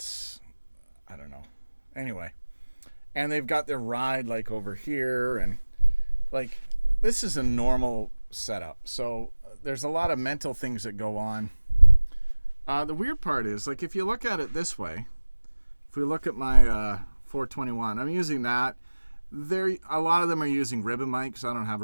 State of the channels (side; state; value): both; inverted; correlation -1.00